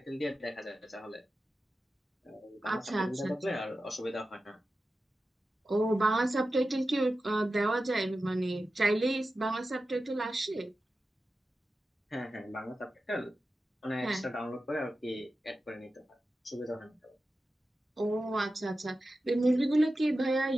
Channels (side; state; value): both; normal; correlation 0.93